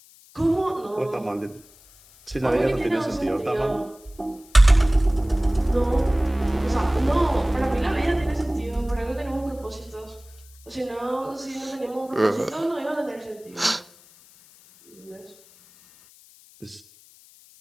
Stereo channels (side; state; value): left; noise; hiss, 26 dB below the sound